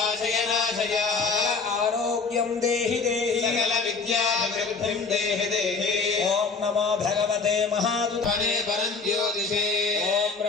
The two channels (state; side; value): quieter; right; 4.6 dB